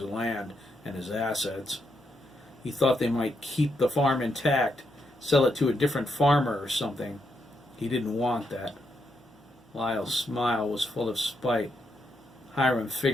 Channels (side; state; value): both; normal; correlation 0.80